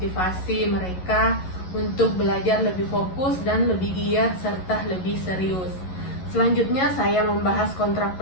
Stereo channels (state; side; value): late; right; 11 ms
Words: mereka untuk belajar lebih fokus dan lebih giat serta lebih serius. Selanjutnya saya membahas kontrak